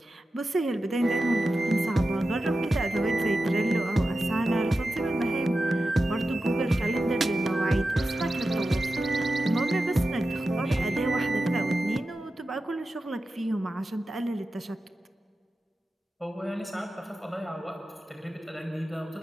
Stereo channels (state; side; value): normal; both; correlation 0.92